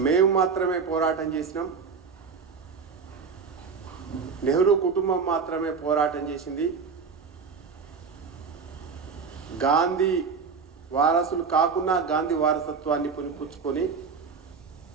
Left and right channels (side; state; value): left; quieter; 5.5 dB